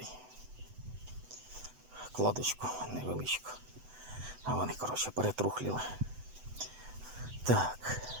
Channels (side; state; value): left; late; 7.9 ms